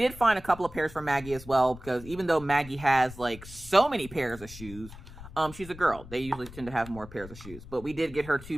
find a couple of pairs for Maggie as well, because even though Maggie has like so many pairs of shoes, she's a girl. They usually tend to have more pairs of shoes. But we did get her 2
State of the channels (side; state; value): left; noise; rumble, 16 dB below the sound